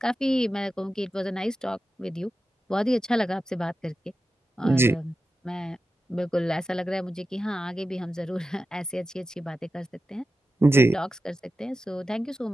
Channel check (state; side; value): normal; both; correlation 0.92